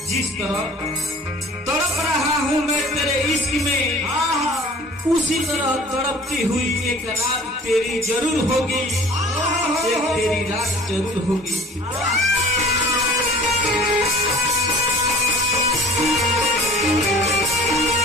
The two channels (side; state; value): both; normal; correlation 0.47